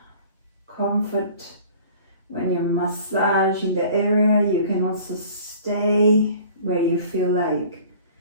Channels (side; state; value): both; inverted; correlation -0.48